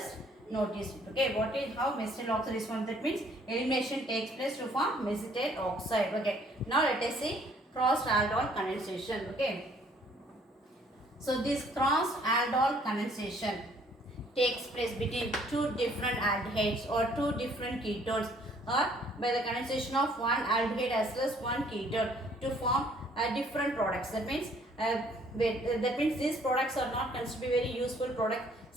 notice it. Okay, what is how mesitile oxide is formed? That means elimination takes place to form mesitile oxide. Okay, now let us see crossed aldol condensation. Okay, so this crossed aldol condensation takes place between two different aldehydes or two different ketones, or by the condensation of one aldehyde as well as one ketone to form different products. That means these products are not considered to be very useful products,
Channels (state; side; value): normal; both; correlation 0.61